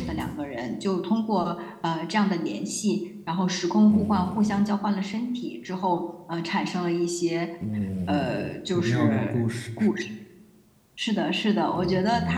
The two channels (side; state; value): both; identical; correlation 1.00